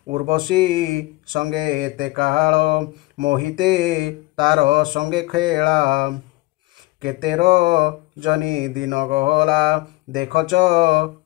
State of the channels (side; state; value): right; quieter; 20.8 dB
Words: उर्वशी संगे एते काल मोहिते तार संगे खेला केतेर जनी दिन गला देखच